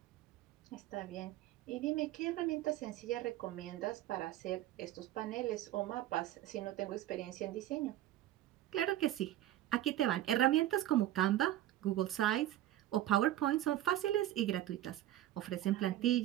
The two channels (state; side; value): quieter; left; 13.8 dB